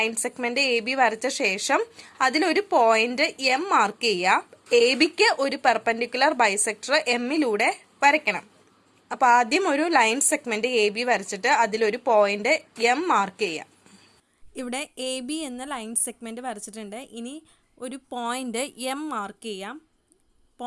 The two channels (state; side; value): identical; both; correlation 1.00